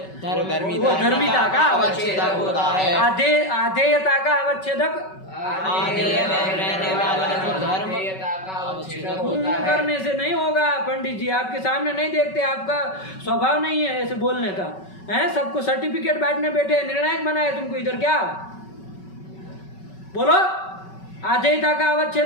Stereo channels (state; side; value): late; right; 5.3 ms